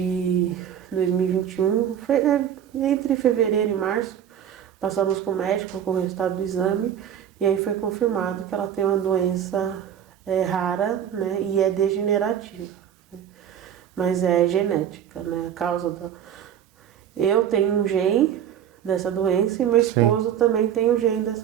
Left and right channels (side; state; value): left; quieter; 9.6 dB